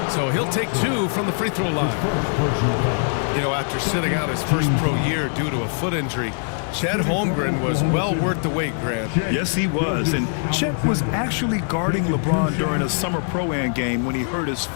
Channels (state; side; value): silent; right; 56 dB below the other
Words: So he'll take 2 from the free throw line. You know, after sitting out his first pro year due to a foot injury, Chet Holmgren was well worth the wait, Grant. Yes, he was. And Chet was actually guarding LeBron during a summer Pro-Am game when he hurt his